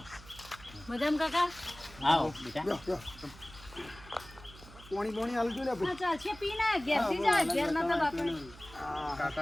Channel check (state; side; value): noise; right; hum, 20 dB below the sound